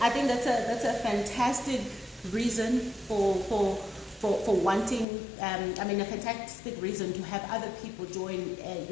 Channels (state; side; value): drops out; right; at 5.1 s